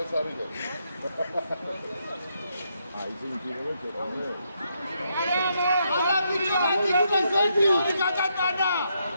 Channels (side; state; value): both; inverted; correlation -0.79